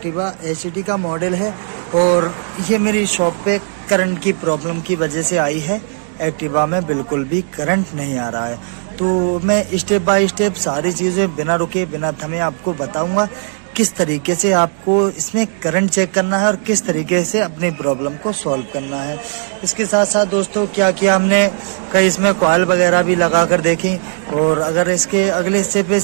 एचडी का मॉडल है और ये मेरी शॉप पे करंट की प्रॉब्लम की वजह से आई है। एक्टिवा में बिल्कुल भी करंट नहीं आ रहा है, तो मैं स्टेप बाय स्टेप सारी चीज़ें बिना रुके बिना थमे आपको बताऊंगा किस तरीके से आपको इसमें करंट चेक करना है और किस तरीके से अपनी प्रॉब्लम को सॉल्व करना है। इसके साथ साथ दोस्तों क्या किया हमने, कई इसमें कॉइल वगैरह भी लगा कर देखी, और अगर इसके अगले हिस्से पे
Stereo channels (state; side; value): silent; left; digital silence